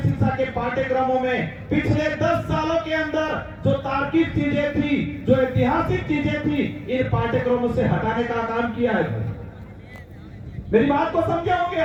शिक्षा के पाठ्यक्रमों में पिछले 10 सालों के अंदर जो तार्किक चीजें थी, जो ऐतिहासिक चीजें थी, इन पाठ्यक्रमों से हटाने का काम किया है। मेरी बात को समझे हो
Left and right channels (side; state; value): both; identical; correlation 1.00